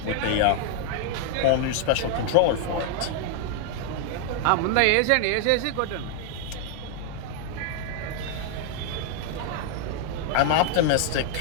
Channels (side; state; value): both; different; correlation 0.00